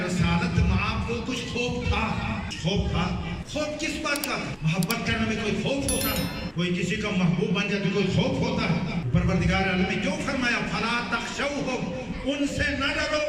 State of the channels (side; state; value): both; identical; correlation 1.00